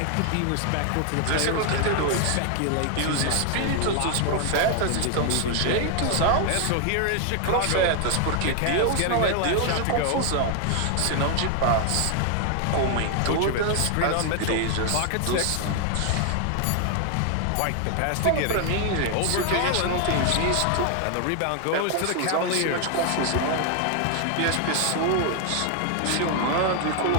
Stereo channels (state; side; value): different; both; correlation 0.00